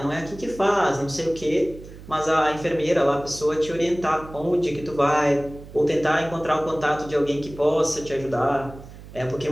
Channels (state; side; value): noise; right; hum, 16 dB below the sound